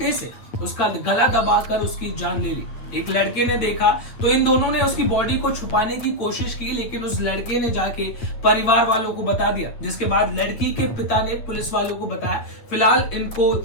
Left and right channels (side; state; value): right; late; 8.8 ms